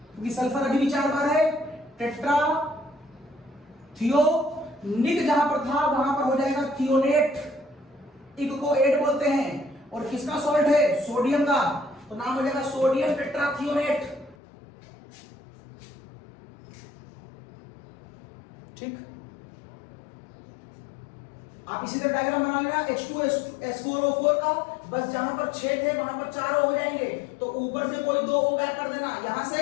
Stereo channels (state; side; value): drops out; right; at 14.4 s